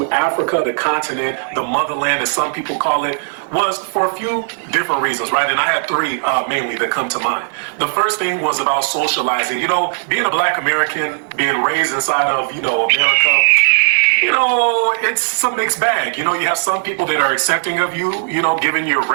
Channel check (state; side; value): silent; left; digital silence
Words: Africa, the continent, the motherland, as some people call it, was for a few different reasons, right? And I had three mainly that come to mind. The first thing was about socializing. You know, being a Black American, being raised inside of, America, it's a mixed bag. You have some people that are accepting of you, given your